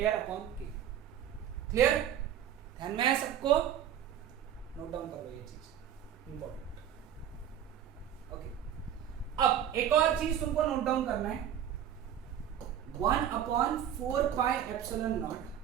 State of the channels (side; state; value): left; quieter; 9.9 dB